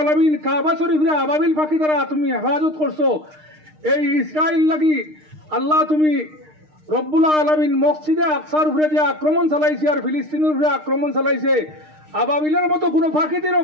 কাবা শরীফে আবাবিল পাখি দ্বারা তুমি হেফাজত করছো, এই ইসরায়েল লাগি আল্লাহ তুমি রব্বুল আলামিন মসজিদে আকসার উপরে যে আক্রমণ চালাইছে আর ফিলিস্তিনের উপরে আক্রমণ চালাইছে, আবাবিলের মতো কোনো ফাঁকিতে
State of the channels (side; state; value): left; late; 6.5 ms